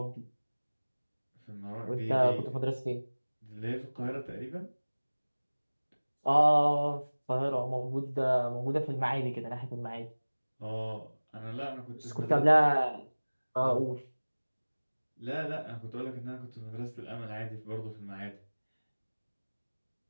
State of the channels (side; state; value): both; inverted; correlation -1.00